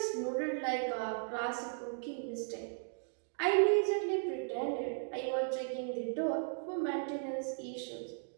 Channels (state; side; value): silent; left; digital silence